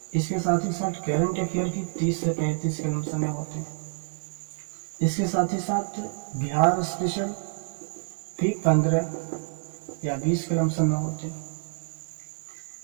इसके साथ ही साथ करंट अफेयर की 30 से 35 के लमसम में होते हैं। इसके साथ ही साथ बिहार स्पेशल भी 15 या 20 के लमसम में होते हैं।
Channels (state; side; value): silent; left; 60 dB below the other